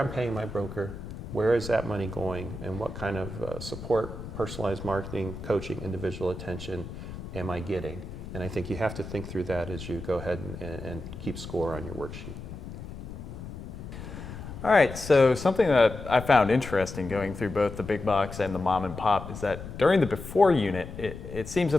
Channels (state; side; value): noise; left; rumble, 11 dB below the sound